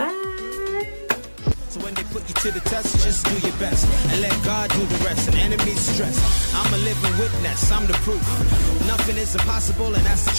So when they put you to the test, just do your best and let God do the rest. And enemies stress, I'm a living witness, I'm the proof. Nothing is impossible, and that's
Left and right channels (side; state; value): both; inverted; correlation -1.00